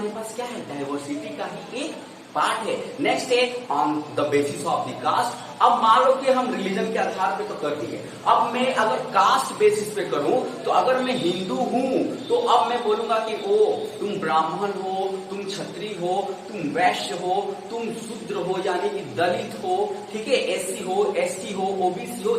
पास क्या है, डाइवर्सिटी का ही एक पार्ट है। नेक्स्ट है on the basis of the caste. अब मान लो कि हम रिलीजन के आधार पे तो कर दिए, अब मैं अगर कास्ट बेसिस पे करूं तो अगर मैं हिंदू हूं तो अब मैं बोलूंगा कि ओ तुम ब्राह्मण हो, तुम क्षत्रिय हो, तुम वैश्य हो, तुम शूद्र हो यानी कि दलित हो, ठीक है, एससी हो, एसटी हो, ओबीसी हो,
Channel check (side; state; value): both; identical; correlation 1.00